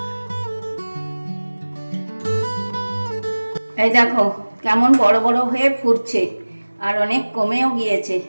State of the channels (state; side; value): inverted; both; correlation -1.00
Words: এই দেখো কেমন বড় বড় হয়ে ফুটছে আর অনেক কমেও গিয়েছে।